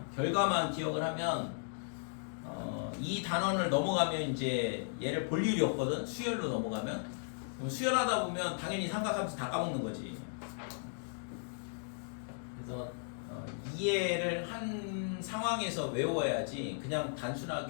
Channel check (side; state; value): right; silent; digital silence